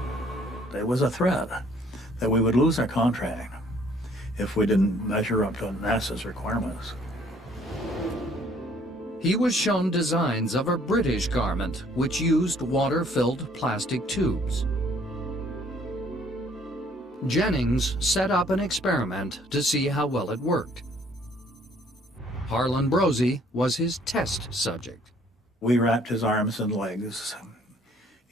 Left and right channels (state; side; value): normal; both; correlation 0.61